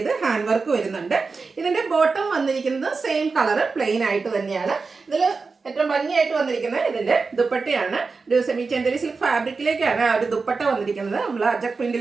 ഹാൻഡ് വർക്ക് വരുന്നുണ്ട്. ഇതിന്റെ ബോട്ടം വന്നിരിക്കുന്നത് സെയിം കളർ പ്ലെയിൻ ആയിട്ട് തന്നെയാണ്. ഇതിൽ ഏറ്റവും ഭംഗിയായിട്ട് വന്നിരിക്കുന്നത് ഇതിന്റെ ദുപ്പട്ടയാണ്. ഒരു സെമി ചെന്തരി സിൽക്ക് ഫാബ്രിക്കിലേക്കാണ് ആ ഒരു ദുപ്പട്ട വന്നിരിക്കുന്നത്. നമ്മൾ അജക്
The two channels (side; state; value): left; quieter; 4.4 dB